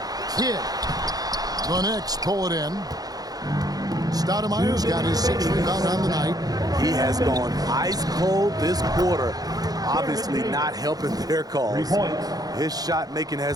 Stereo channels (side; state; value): left; late; 0.18 ms